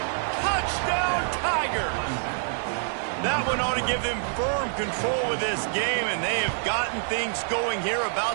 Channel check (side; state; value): left; silent; digital silence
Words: Touchdown, Tigers. That one ought to give them firm control of this game, and they have gotten things going here,